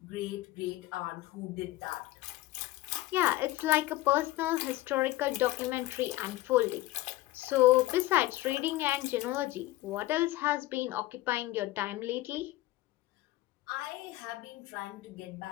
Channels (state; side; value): quieter; right; 17.2 dB